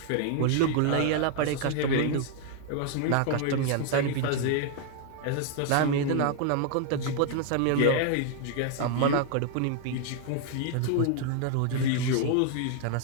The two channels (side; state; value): both; different; correlation 0.00